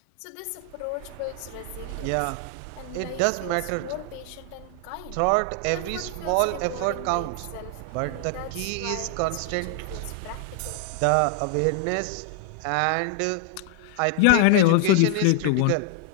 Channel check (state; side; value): different; both; correlation 0.00